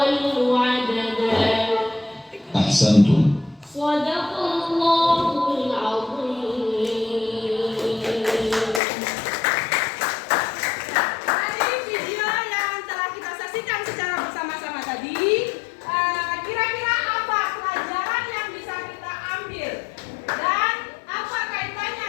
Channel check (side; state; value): right; drops out; at 8.8 s